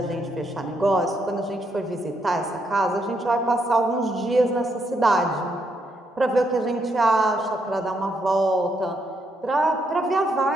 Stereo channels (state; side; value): normal; both; correlation 0.77